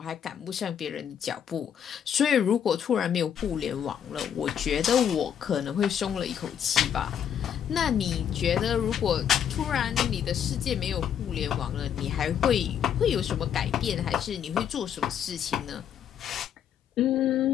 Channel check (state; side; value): quieter; right; 8.8 dB